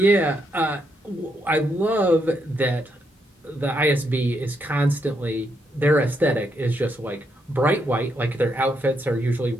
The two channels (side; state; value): both; normal; correlation 0.78